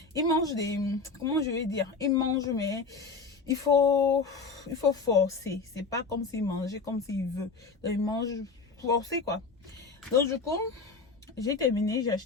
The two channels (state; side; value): quieter; right; 4.4 dB